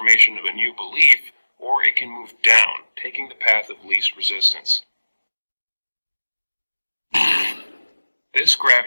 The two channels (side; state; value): both; inverted; correlation -1.00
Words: of a new belief, or it can move down, taking the path of least resistance. This